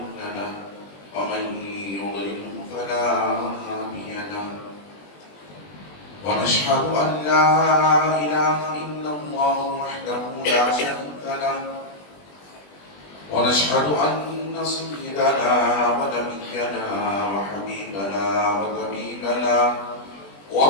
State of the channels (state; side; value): late; right; 20 ms